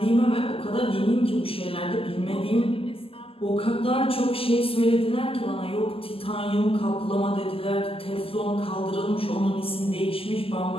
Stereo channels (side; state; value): right; late; 0.27 ms